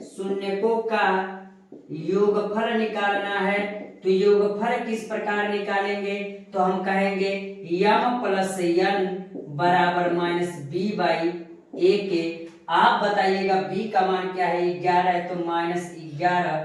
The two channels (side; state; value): both; identical; correlation 1.00